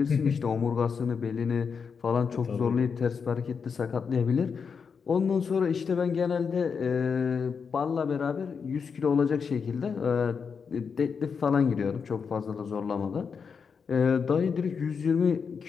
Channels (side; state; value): right; quieter; 6.0 dB